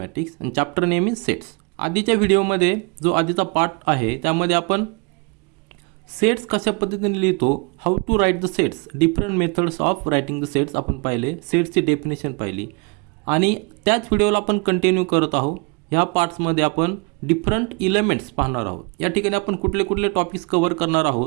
and chapter name is sets. आधीच्या व्हिडिओमध्ये जो आधीचा part आहे त्यामध्ये आपण sets कशा पद्धतीने लिहितो, how to write the sets, different methods of writing the sets आपण पाहिले, सेट्सची डेफिनेशन पाहिली आणि त्याच व्हिडिओला आपण कंटिन्यू करत आहोत. ह्या पार्ट्समध्ये आपण डिफरंट इलेमेंट्स पाहणार आहोत. या ठिकाणी आपण कुठले कुठले टॉपिक्स कव्हर करणार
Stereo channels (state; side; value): quieter; left; 30.9 dB